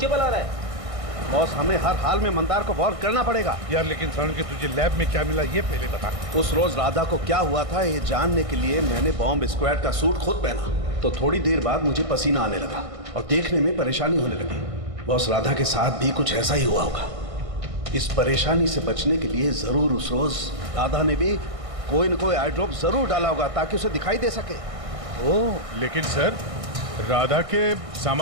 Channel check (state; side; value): late; left; 1.6 ms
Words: आ रहा है। बॉस, हमें हर हाल में मंदार को वॉर्न करना पड़ेगा। यार लेकिन सरण के तुझे लैब में क्या मिला ये पहले बता। उस रोज राधा को क्या हुआ था ये जानने के लिए मैंने बॉम्ब स्क्वाड का सूट खुद पहना। तो थोड़ी देर बाद मुझे पसीना आने लगा और देखने में परेशानी होने लगी। बॉस, राधा के साथ भी कुछ ऐसा ही हुआ होगा। इस परेशानी से बचने के लिए जरूर उस रोज राधा ने भी कोई न कोई आई ड्रॉप जरूर डाला होगा ताकि उसे दिखाई दे सके। ओह, लेकिन सर राधा के